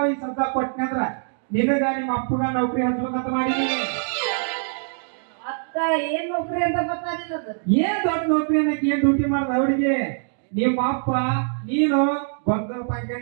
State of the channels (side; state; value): left; silent; digital silence